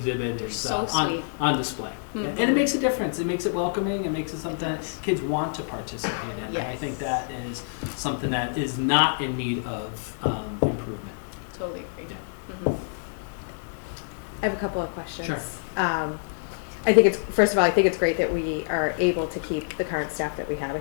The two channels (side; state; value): right; silent; digital silence